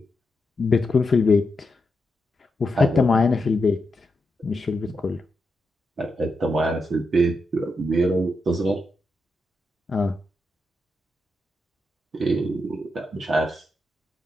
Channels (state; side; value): normal; both; correlation 0.85